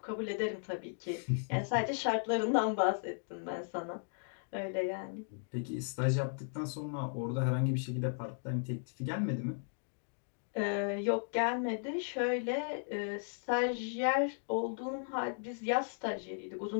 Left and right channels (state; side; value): silent; right; digital silence